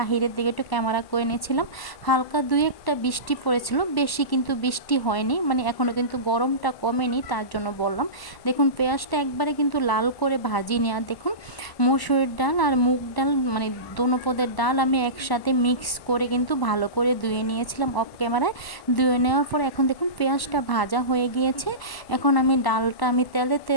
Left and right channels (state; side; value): late; right; 1.1 ms